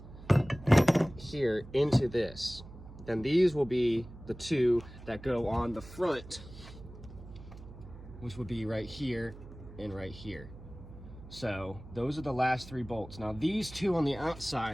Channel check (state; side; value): noise; right; hum, 16 dB below the sound